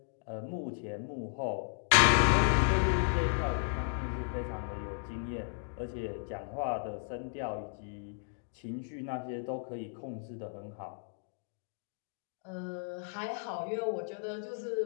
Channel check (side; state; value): right; silent; digital silence